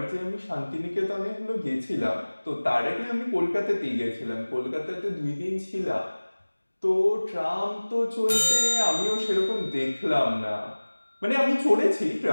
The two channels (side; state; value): both; inverted; correlation -1.00